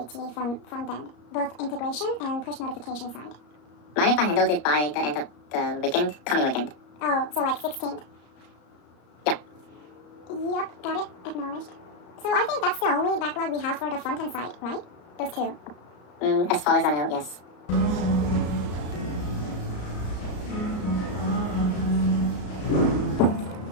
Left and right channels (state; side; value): late; right; 34 ms